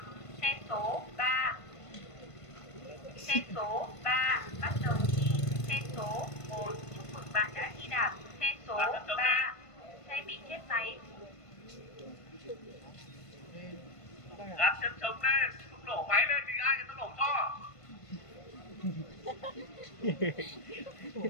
Xe số 3. Xe số 3 bắt đầu thi. Xe số 1 chúc mừng bạn đã thi đạt. Xe số 3 xe bị chết máy. Đặt chân chống lên, không nổ máy lên thì ai người ta nổ cho.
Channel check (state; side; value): late; right; 1.5 ms